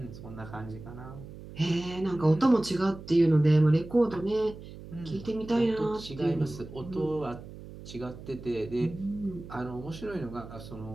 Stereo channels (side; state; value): right; noise; hum, 14 dB below the sound